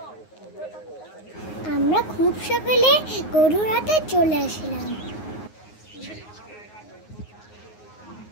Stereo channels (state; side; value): late; right; 9.5 ms